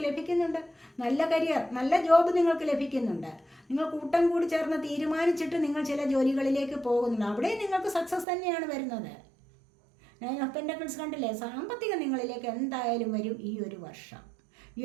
ലഭിക്കുന്നുണ്ട്. നല്ല കരിയർ, നല്ല ജോബ് നിങ്ങൾക്ക് ലഭിക്കുന്നുണ്ട്. നിങ്ങൾ കൂട്ടം കൂടി ചേർന്ന് തീരുമാനിച്ചിട്ട് നിങ്ങൾ ചില ജോലികളിലേക്ക് പോകുന്നുണ്ട്. അവിടെ നിങ്ങൾക്ക് സക്സസ് തന്നെയാണ് വരുന്നത്. 9 ഓഫ് പെൻറ്റക്കിൾസ് കണ്ടില്ലേ? സാമ്പത്തികം നിങ്ങളിലേക്ക് എന്തായാലും വരും ഈ ഒരു വർഷം.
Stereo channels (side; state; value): left; drops out; at 8.2 s